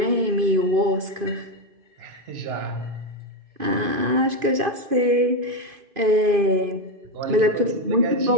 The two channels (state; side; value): late; left; 2.5 ms